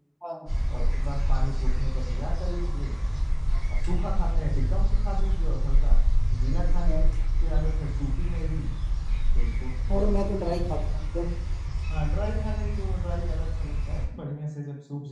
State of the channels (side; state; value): both; identical; correlation 1.00